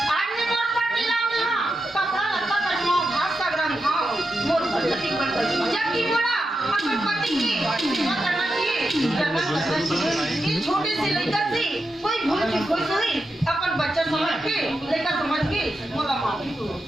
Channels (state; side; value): normal; both; correlation 0.88